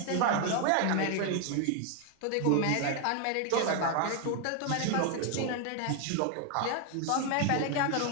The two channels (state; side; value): different; both; correlation 0.00